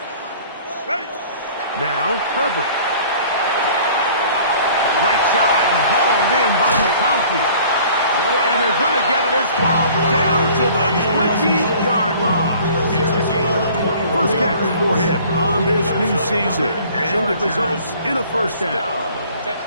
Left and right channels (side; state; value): both; inverted; correlation -0.50